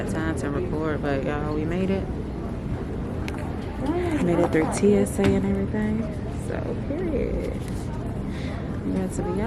time to record, but y'all, we made it. Made it through TSA and everything. So, period. I'm glad to be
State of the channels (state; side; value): identical; both; correlation 1.00